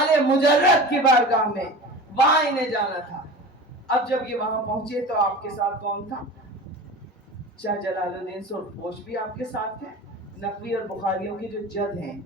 مجرد کی بارگاہ میں، وہاں انہیں جانا تھا. اب جب یہ وہاں پہنچے تو آپ کے ساتھ کون تھا؟ شاہ جلال الدین سرخ پوش بھی آپ کے ساتھ تھے. نقوی اور بخاریوں کے جو جد ہیں،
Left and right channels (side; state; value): both; normal; correlation 0.34